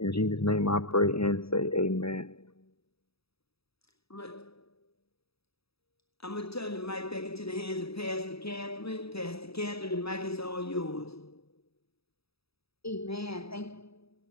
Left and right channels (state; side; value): late; right; 0.77 ms